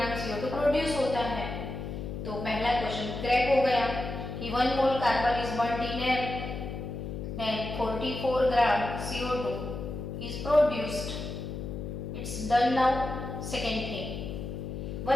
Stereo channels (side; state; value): left; noise; hum, 6 dB below the sound